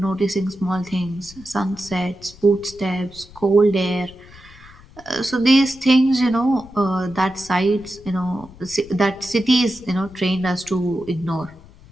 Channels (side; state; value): left; noise; rumble, 22 dB below the sound